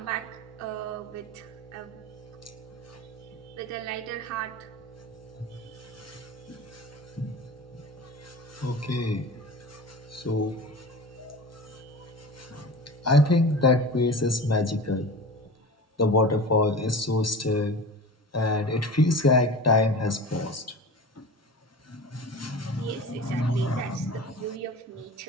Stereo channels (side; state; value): both; normal; correlation 0.34